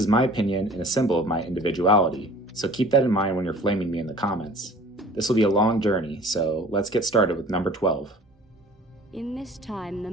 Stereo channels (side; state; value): both; normal; correlation 0.47